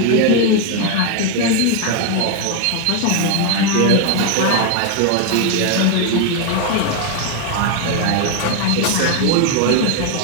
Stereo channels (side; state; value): both; different; correlation 0.01